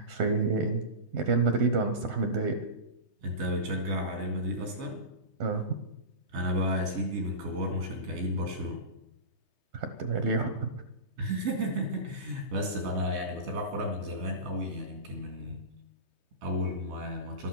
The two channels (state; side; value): late; left; 3.2 ms